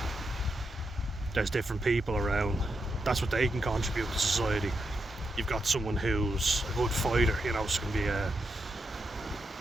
there's different people around. That's what they can contribute to society. You've got someone who's a good fighter, you know, so can be a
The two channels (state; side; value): normal; both; correlation 0.84